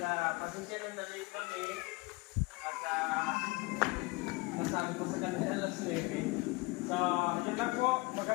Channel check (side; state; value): right; quieter; 24.3 dB